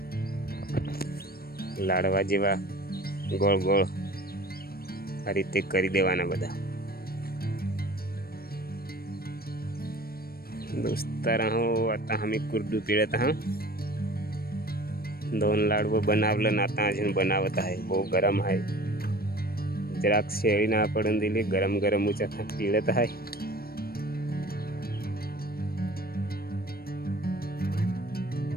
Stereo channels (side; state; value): right; late; 0.44 ms